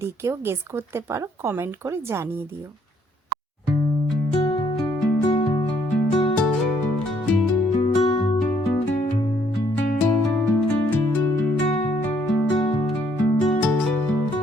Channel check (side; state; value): both; normal; correlation 0.67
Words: কেউ গেস করতে পারো কমেন্ট করে জানিয়ে দিও।